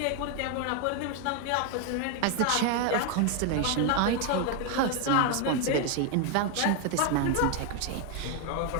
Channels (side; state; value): both; different; correlation 0.01